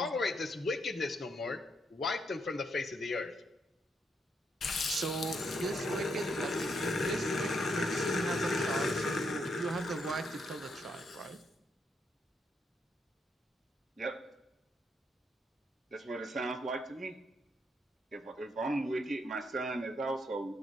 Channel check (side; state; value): both; normal; correlation 0.77